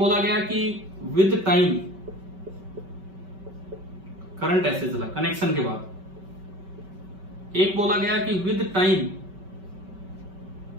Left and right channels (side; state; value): left; late; 5.2 ms